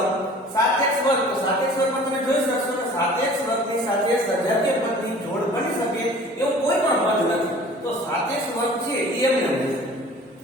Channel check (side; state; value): both; normal; correlation 0.47